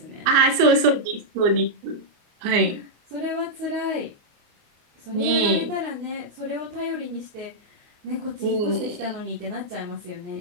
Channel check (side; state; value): left; late; 29 ms